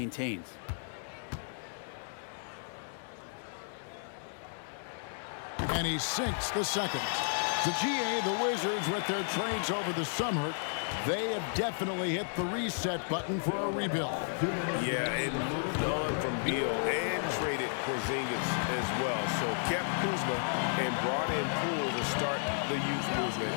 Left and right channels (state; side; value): silent; right; 56 dB below the other